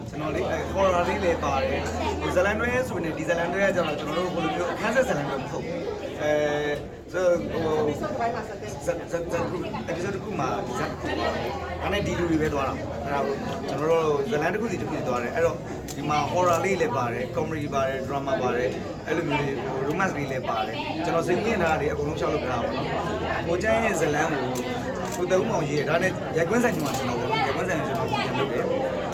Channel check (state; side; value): identical; both; correlation 1.00